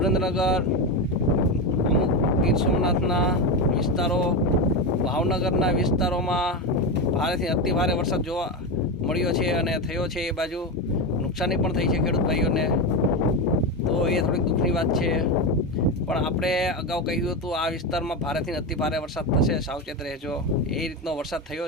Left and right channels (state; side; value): normal; both; correlation 0.15